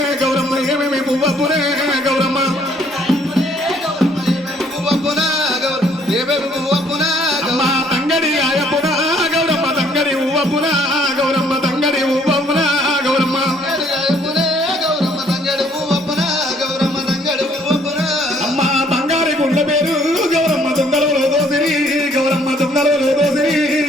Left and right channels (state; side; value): normal; both; correlation 0.63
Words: గౌరమ్మ ఏమేమి పువ్వపురే. గౌరమ్మ అమ్మ తంగడి ఆయపున గౌరమ్మ తంగడి ఊవపున. గౌరమ్మ తంగడి ఊవపున. గౌరమ్మ అమ్మ బంగారి గుండ్ల పేరు గౌరమ్మ దొంగలలో దోసిరి. గౌరమ్మ దొంగలలో దోసిరి.